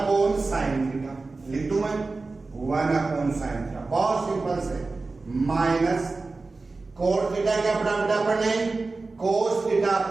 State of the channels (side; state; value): left; quieter; 3.7 dB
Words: साइन थीटा। लिख दूं मैं 1 अपॉन साइन थीटा, बहुत सिंपल से, माइनस कोट थीटा क्या पढ़ा बेटा अपन ने कोस थीटा